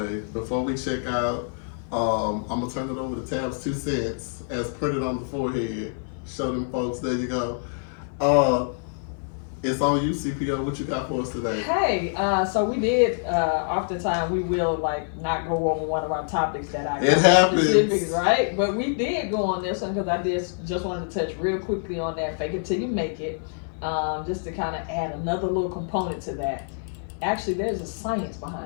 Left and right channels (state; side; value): silent; right; 56 dB below the other